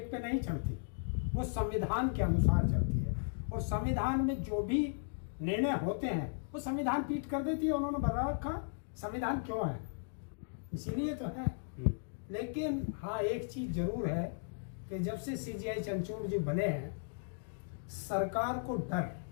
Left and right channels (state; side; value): silent; right; digital silence